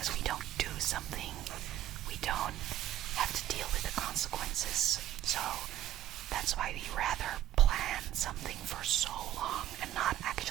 we don't do something, we don't have to deal with the consequences. So that's why we rather plan something for so long and not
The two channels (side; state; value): left; quieter; 12.8 dB